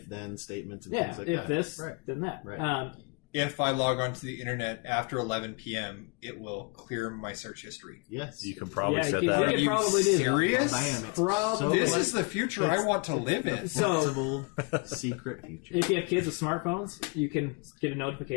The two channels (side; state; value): right; quieter; 33.4 dB